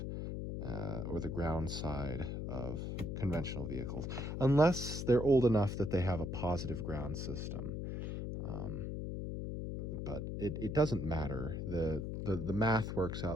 or the ground side of conventional vehicles, unless they're old enough that they have a positive ground system. But it doesn't matter. The math works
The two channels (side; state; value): left; noise; hum, 4 dB below the sound